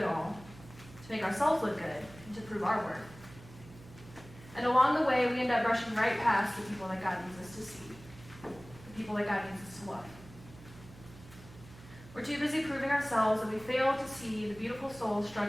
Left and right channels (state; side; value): noise; right; hum, 19 dB below the sound